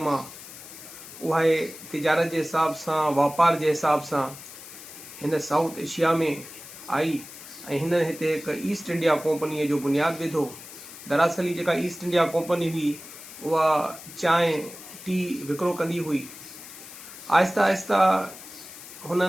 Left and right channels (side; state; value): left; noise; hiss, 15 dB below the sound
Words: उहा तिजारत जे हिसाब सां, वापार जे हिसाब सां हिन साउथ एशिया में आई ऐं हिन हिते हिकु ईस्ट इंडिया कंपनीअ जो बुनियादु विधो। दरअसल ही जेका ईस्ट इंडिया कंपनी हुई उहा चांहि टी विकिरो कंदी हुई। आहिस्ता आहिस्ता